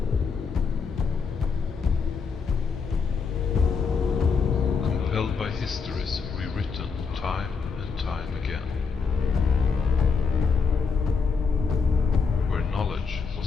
Compelled by histories rewritten time and time again. Knowledge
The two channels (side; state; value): right; quieter; 5.3 dB